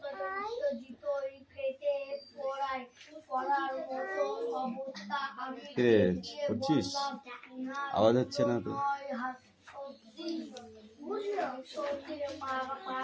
কিরে করছিস? আওয়াজ হচ্ছে না তো?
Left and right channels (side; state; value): both; identical; correlation 1.00